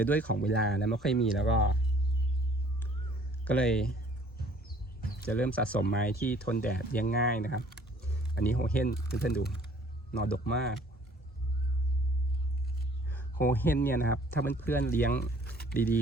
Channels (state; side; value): normal; both; correlation 0.57